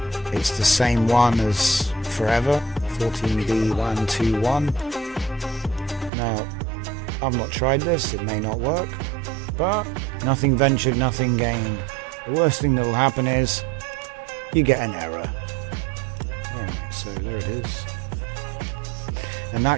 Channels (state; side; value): drops out; left; at 6.1 s